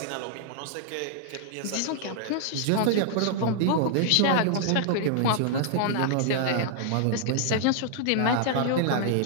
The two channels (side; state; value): both; different; correlation -0.01